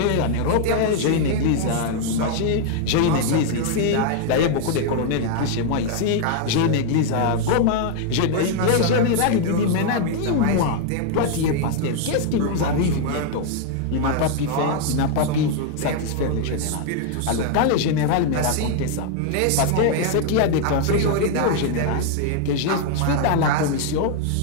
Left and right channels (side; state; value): both; different; correlation 0.00